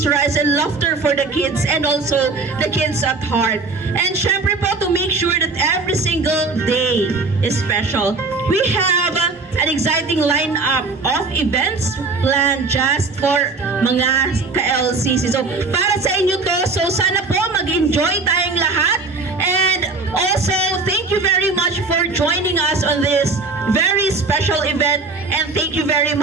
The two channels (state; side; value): quieter; left; 3.9 dB